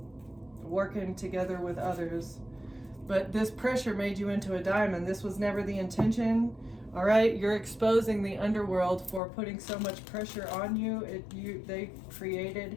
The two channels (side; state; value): right; drops out; at 9.2 s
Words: working together with others. But this pressure made you into a diamond. This was never the intention. All right, you're exposing the underworld for putting so much pressure on you. They